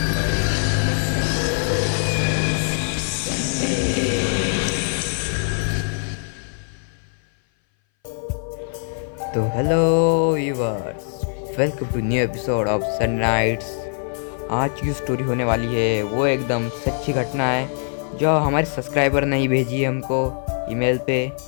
तो hello viewers, welcome to new episode of sunrights. आज की स्टोरी होने वाली है वो एकदम सच्ची घटना है जो हमारे सब्सक्राइबर ने ही भेजी है हमको ईमेल पे।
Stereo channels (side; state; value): right; silent; 59 dB below the other